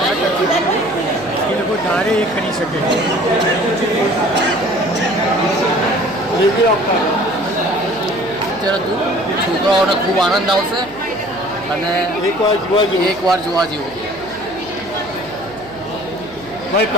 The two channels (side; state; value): right; noise; hum, 21 dB below the sound